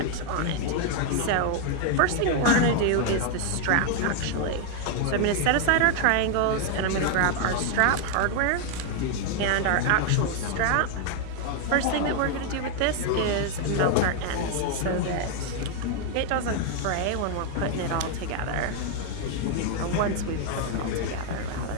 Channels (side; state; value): both; different; correlation 0.00